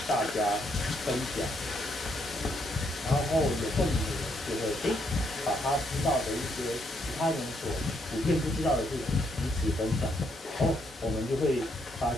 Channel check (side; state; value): both; normal; correlation 0.74